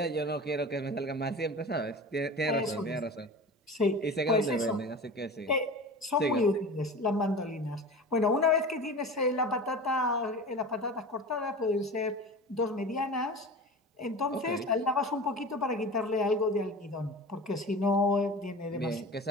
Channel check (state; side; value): normal; both; correlation 0.34